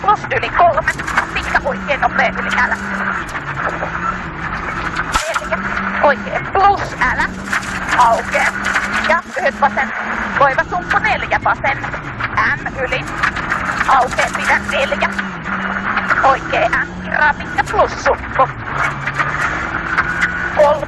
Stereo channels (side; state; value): both; identical; correlation 1.00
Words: yli 3. Pitkä oikee nopea yli älä. 4. Oikee plus älä. Aukee. Ja lyhyt vasen loiva sumppu 4. Vasen M yli. Aukee pidä 4. Oikee M kirraa pitkä plus sumppu.